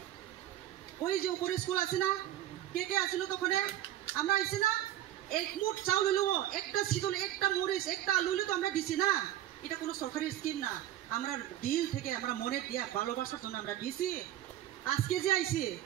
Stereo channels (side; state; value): left; quieter; 13.0 dB